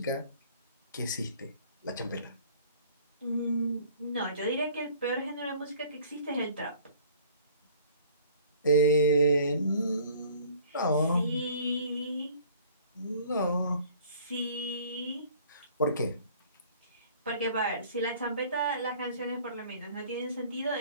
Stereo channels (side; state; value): both; inverted; correlation -0.53